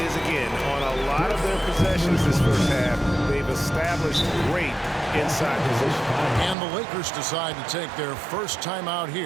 again. On a lot of their possessions this first half, they've established great inside position. And the Lakers decide to take their first time out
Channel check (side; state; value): left; drops out; at 6.6 s